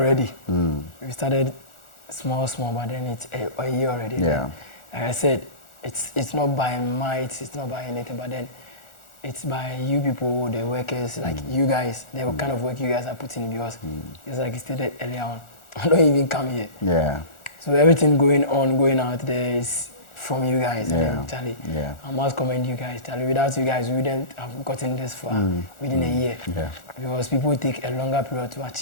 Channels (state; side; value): late; right; 1.4 ms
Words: We started small, but then it's a year already. Yeah. Like I said, it's not by might, it's not by anything, but then it's by you people, the workers, like you guys, the kind of work you guys are putting in, because it's like you stated earlier on, I don't even come here. Yeah. So everything going out there is from you guys. And then, Charlie, I must commend you guys, Charlie. Without you guys, we wouldn't have gotten this far within a year. Yeah. Because people take a longer period to